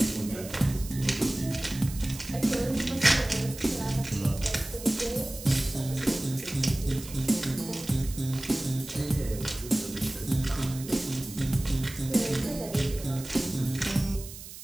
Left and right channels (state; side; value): noise; right; hiss, 13 dB below the sound